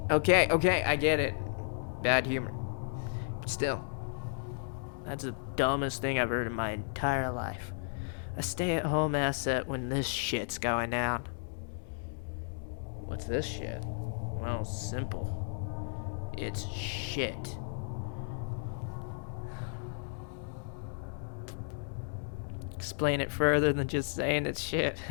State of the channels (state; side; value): silent; right; digital silence